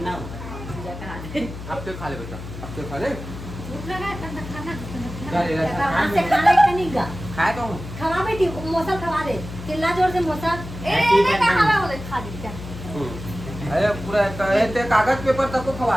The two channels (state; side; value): noise; left; hum, 10 dB below the sound